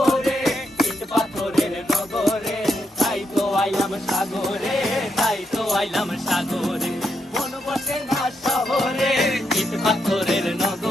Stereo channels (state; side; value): normal; both; correlation 0.80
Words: ইট পাথরের নগরে, তাই তো আইলাম সাগরে, তাই তো আইলাম সাগরে। মন বসে না শহরে, ইট পাথরের